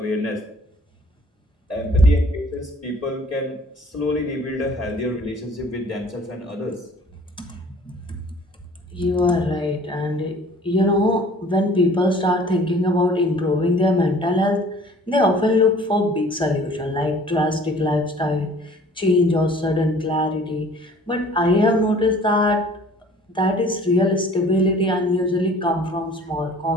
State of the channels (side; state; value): both; normal; correlation 0.51